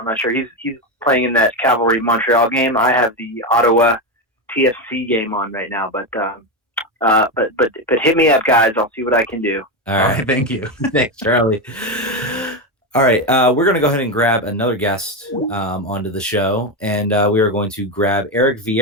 not sure. He's playing in that Cavalry Montreal game. I have the Ottawa TFC game on right now, but hit me up, guys. I'll see what I can do. All right. Thank you. Thanks, Charlie. All right, we're going to go ahead and grab another guest onto the show, and we are going to grab Eric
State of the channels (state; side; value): normal; both; correlation 0.12